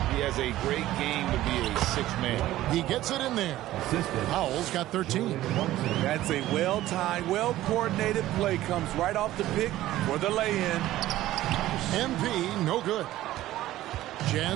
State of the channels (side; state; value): left; quieter; 15.0 dB